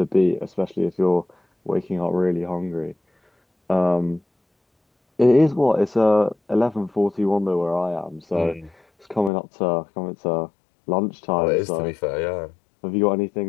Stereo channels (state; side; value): drops out; right; at 9.3 s